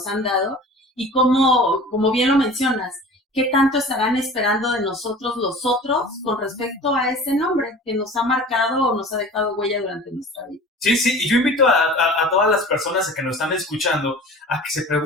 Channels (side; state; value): both; normal; correlation 0.40